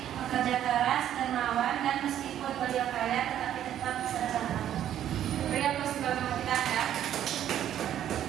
bekerja keras, dermawan, dan meskipun beliau kaya tetapi tetap sederhana. Beri aplaus untuk kita ya.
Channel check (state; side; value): quieter; left; 10.9 dB